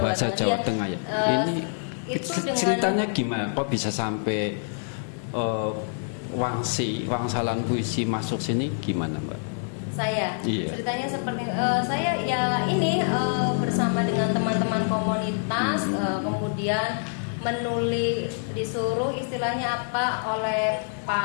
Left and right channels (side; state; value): right; silent; digital silence